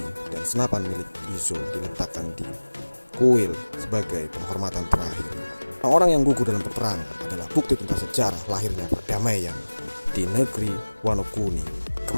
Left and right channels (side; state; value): both; inverted; correlation -1.00